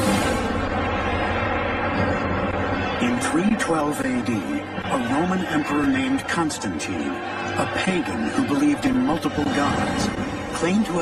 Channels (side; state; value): both; identical; correlation 1.00